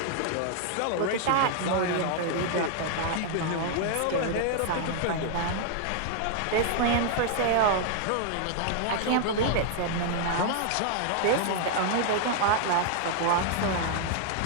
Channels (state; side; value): different; both; correlation 0.00